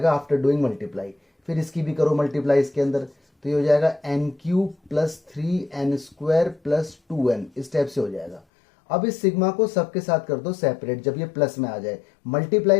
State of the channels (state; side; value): drops out; right; at 8.4 s